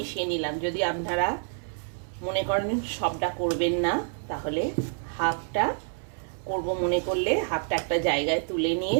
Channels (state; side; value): silent; left; digital silence